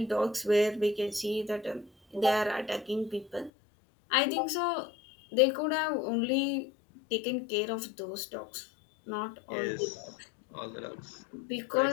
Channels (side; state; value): right; drops out; at 3.5 s